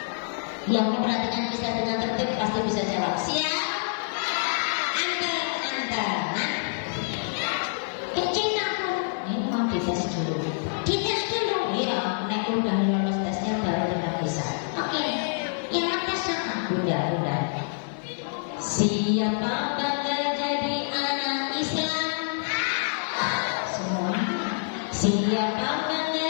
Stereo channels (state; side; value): silent; right; 60 dB below the other